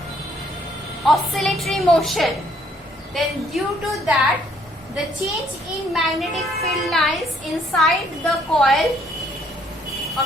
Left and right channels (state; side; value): normal; both; correlation 0.65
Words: oscillatory motion, then due to that, the change in magnetic field lines inside the coil, a